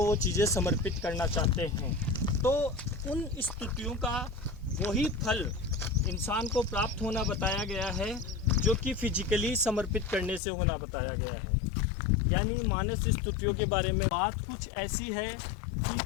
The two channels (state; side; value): drops out; right; at 10.4 s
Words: वो चीज़ें समर्पित करना चाहते हैं। तो उन स्तुतियों का वही फल इंसान को प्राप्त होना बताया गया है जो कि फिजिकली समर्पित करने से होना बताया गया है। यानी मानस स्तुतियों के बारे में बात कुछ ऐसी है